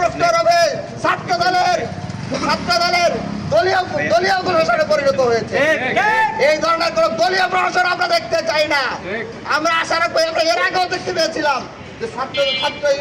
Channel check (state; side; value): identical; both; correlation 1.00